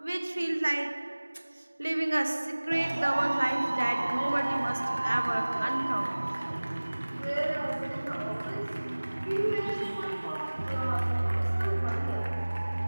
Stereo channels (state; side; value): inverted; both; correlation -1.00